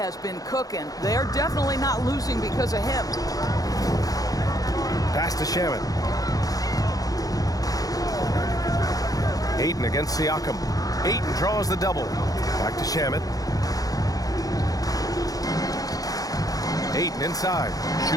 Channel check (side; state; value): right; late; 0.18 ms